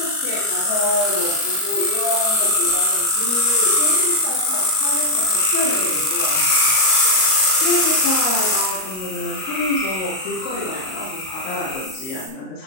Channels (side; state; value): right; late; 38 ms